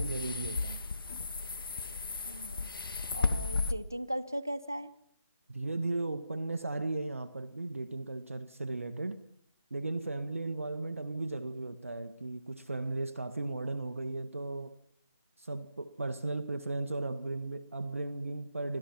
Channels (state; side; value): inverted; both; correlation -0.84